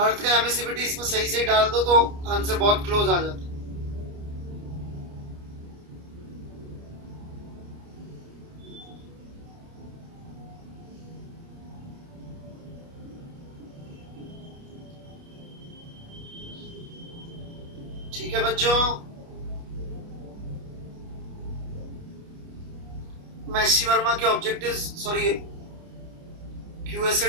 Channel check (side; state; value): left; late; 29 ms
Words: अर्थ का एमिसिविटी इसमें सही से डाल दो तो आंसर बहुत क्लोज आ जाता है। ठीक है बच्चों, मैं एससी वर्मा के ऑब्जेक्टिव्स, सॉरी क्यूएस से